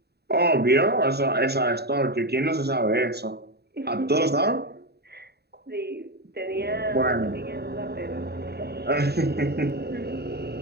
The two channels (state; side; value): late; left; 0.47 ms